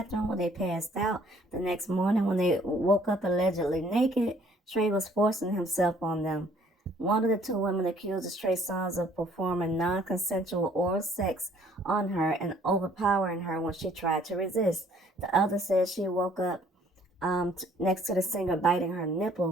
where they passed out. The next morning, when they woke up allegedly naked, Trey was forcing himself on them. One of the 2 women accused Trey Songz of performing non-consensual oral sex on her and overpowering her when she tried to resist. The other said she woke up next to the singer biting her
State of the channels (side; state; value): both; normal; correlation 0.60